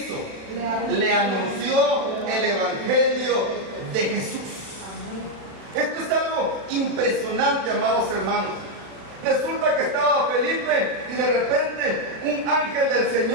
Le anunció el Evangelio de Jesús. Esto es algo impresionante, amados hermanos. Resulta que estaba Felipe y de repente un ángel del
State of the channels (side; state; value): left; late; 35 ms